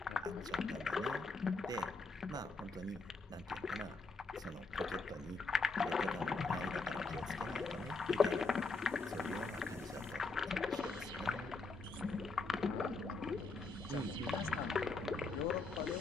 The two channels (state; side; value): quieter; right; 3.9 dB